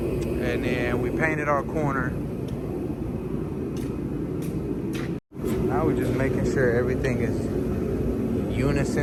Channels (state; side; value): identical; both; correlation 1.00